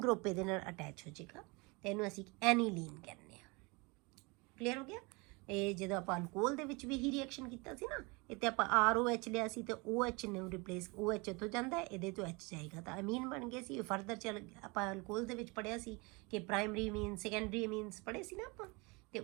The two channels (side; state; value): left; quieter; 27.7 dB